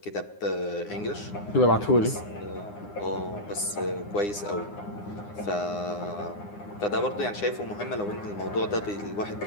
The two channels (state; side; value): late; right; 9.8 ms